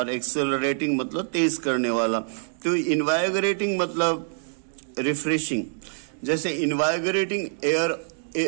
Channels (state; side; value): silent; left; digital silence